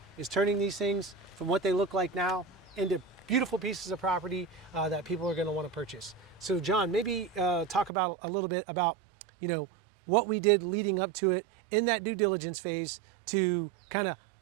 is turning these things from what they look like now into beautiful pieces of property that people are going to want to purchase. So John, maybe talk about a little bit about, you know, what we did leading up to it in that due diligence phase to kind of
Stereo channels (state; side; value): drops out; left; at 7.9 s